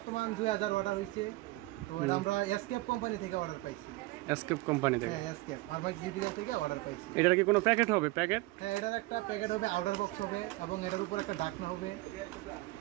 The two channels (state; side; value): quieter; left; 20.5 dB